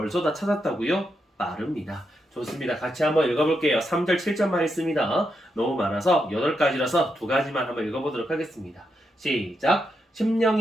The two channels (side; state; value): both; normal; correlation 0.83